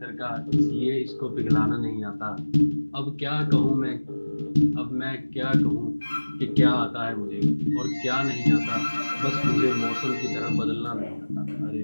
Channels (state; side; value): inverted; both; correlation -1.00